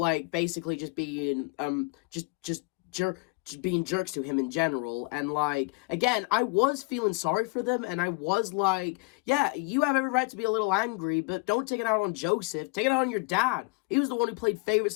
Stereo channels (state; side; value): quieter; right; 27.5 dB